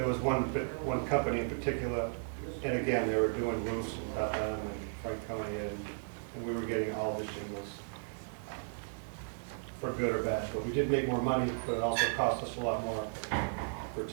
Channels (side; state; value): left; silent; digital silence